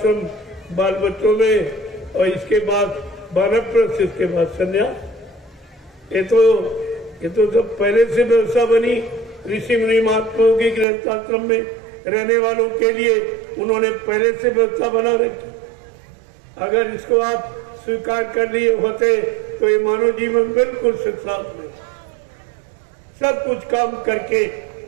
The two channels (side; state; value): left; drops out; at 10.9 s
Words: बाल बच्चों में, और इसके बाद वानप्रस्थ, इसके बाद संन्यास। ये तो सब पहले से व्यवस्था बनी ऋषि मुनि महात्माओं की गृहस्थ आश्रम में रहने वालों के लिए, उन्होंने पहले से व्यवस्था बना रखी। अगर इसको आप स्वीकार कर लिए होते तो ये मानव जीवन बिल्कुल सुखसात में, सब कुछ काम करके